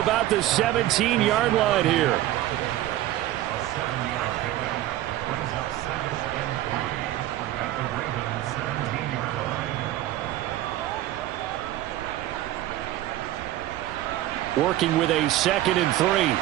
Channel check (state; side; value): quieter; left; 14.5 dB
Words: the 17-yard line here. Working with a 2nd and